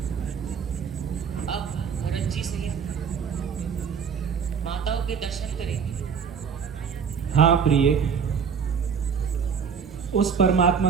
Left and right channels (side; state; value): left; quieter; 6.7 dB